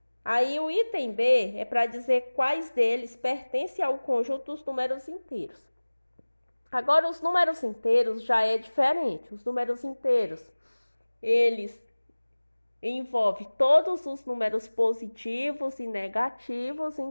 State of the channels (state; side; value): inverted; both; correlation -1.00